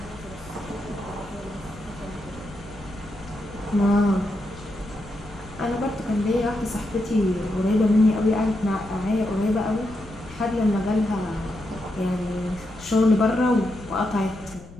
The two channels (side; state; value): left; noise; rumble, 19 dB below the sound